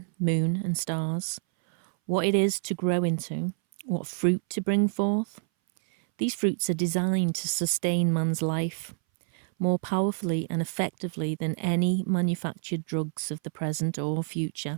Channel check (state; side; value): silent; left; 60 dB below the other